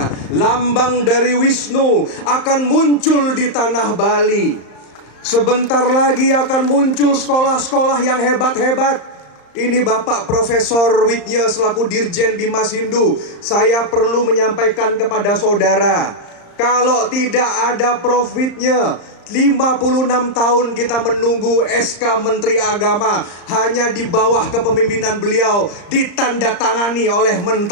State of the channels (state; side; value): late; right; 35 ms